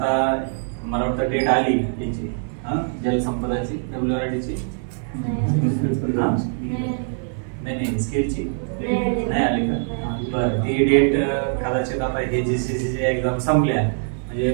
मला वाटतं डेट आली त्याची जलसंपदाची WRDची नाही स्किलची नाही आली का? बरं, ती डेट कदाचित आता हे GCC एक्झाम संपल्या म्हणजे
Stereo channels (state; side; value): silent; left; 61 dB below the other